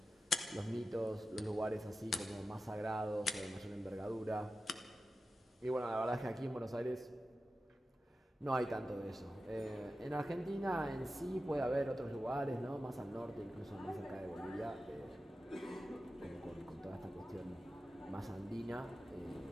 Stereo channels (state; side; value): normal; both; correlation 0.93